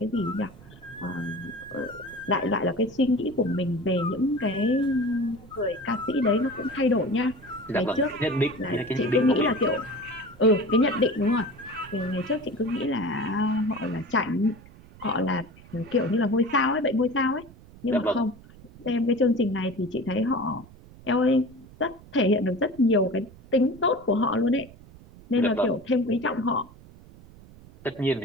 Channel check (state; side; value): noise; right; rumble, 21 dB below the sound